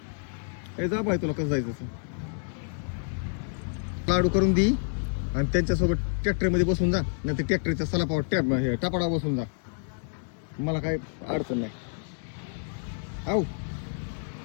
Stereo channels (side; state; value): right; silent; digital silence